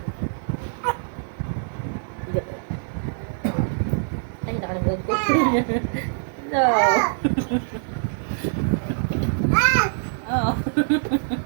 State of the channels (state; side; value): silent; left; digital silence